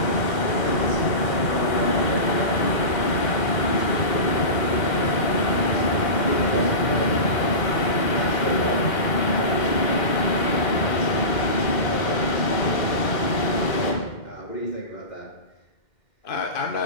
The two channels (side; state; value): right; late; 2.1 ms